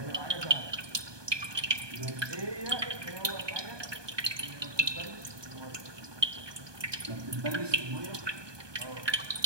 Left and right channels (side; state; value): left; late; 1.2 ms